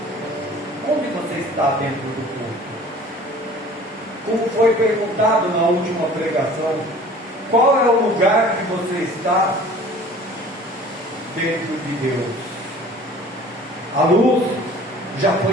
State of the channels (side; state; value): both; normal; correlation 0.47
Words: Onde você está dentro do corpo? como foi perguntado na última pregação, qual é o lugar que você está dentro de Deus? A luz já